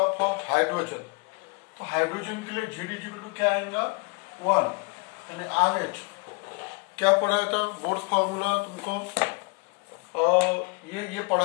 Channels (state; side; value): quieter; right; 32.7 dB